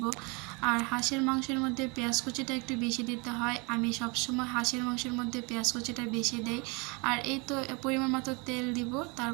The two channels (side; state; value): left; quieter; 29.7 dB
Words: আর হাঁসের মাংসের মধ্যে পেঁয়াজ কুচিটা একটু বেশি দিতে হয়। আমি সবসময় হাঁসের মাংসের মধ্যে পেঁয়াজ কুচিটা বেশি দেই। আর এই তো পরিমাণ মতো তেল দিব,